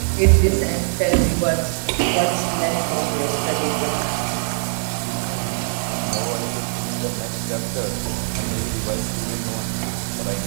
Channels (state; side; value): silent; left; 64 dB below the other